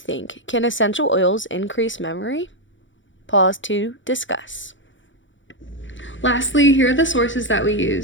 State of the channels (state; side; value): late; right; 0.55 ms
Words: Can essential oils increase memory? Pause to discuss. Lastly, here are the sources that we